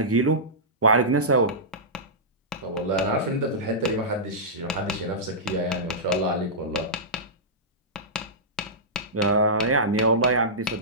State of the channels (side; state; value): both; normal; correlation -0.16